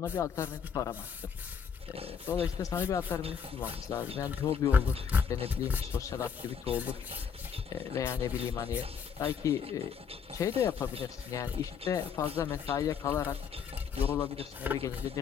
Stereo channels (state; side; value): quieter; right; 7.0 dB